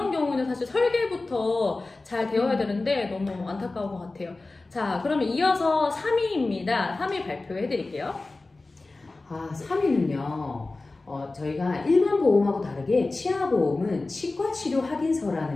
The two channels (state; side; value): quieter; right; 3.3 dB